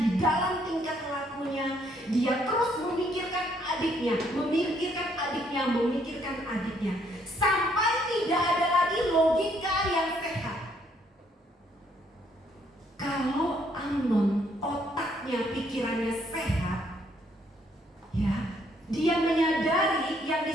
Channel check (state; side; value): normal; both; correlation 0.69